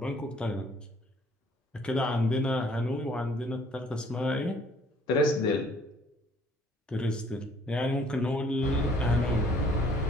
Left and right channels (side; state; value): both; normal; correlation 0.59